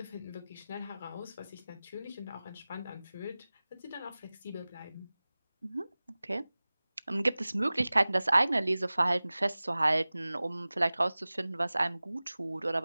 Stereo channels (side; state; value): both; inverted; correlation -0.98